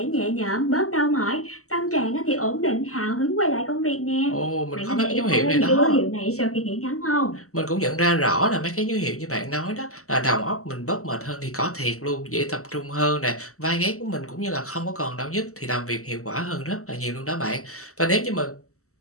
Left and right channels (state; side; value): late; right; 0.64 ms